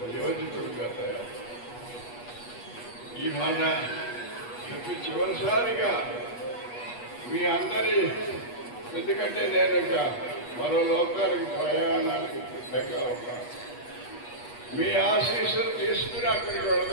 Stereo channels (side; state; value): right; late; 8.3 ms